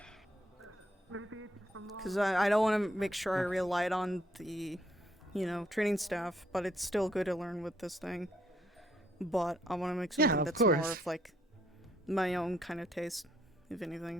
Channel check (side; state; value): both; normal; correlation 0.70